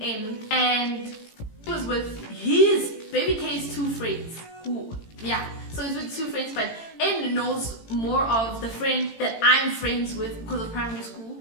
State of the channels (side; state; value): right; late; 18 ms